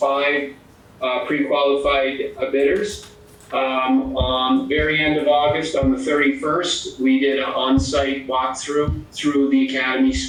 pre-qualified bidders. On the very end of August, on the 31st, we did an on-site walkthrough through the Academy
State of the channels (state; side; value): identical; both; correlation 1.00